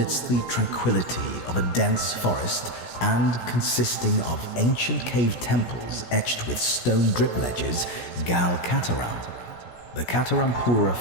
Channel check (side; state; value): right; late; 17 ms